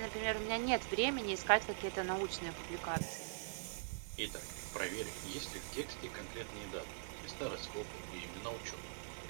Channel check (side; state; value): left; silent; digital silence